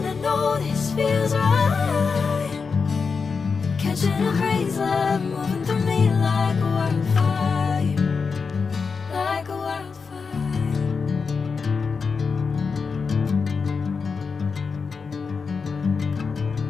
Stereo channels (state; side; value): quieter; right; 5.2 dB